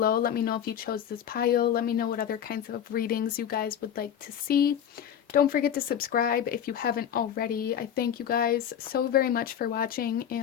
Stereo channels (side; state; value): right; quieter; 9.3 dB